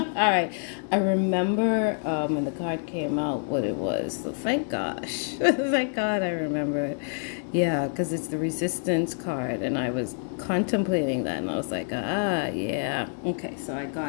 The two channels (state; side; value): silent; right; 60 dB below the other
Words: right. I remember when the card came out what it was. So thank gosh. Thank God I remember it. Yeah, because it's the resistance card. And I was contemplating that. And I was like, yeah. Okay, so I